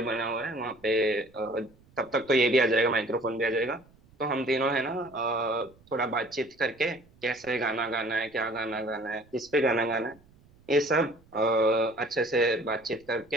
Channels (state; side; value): noise; right; rumble, 29 dB below the sound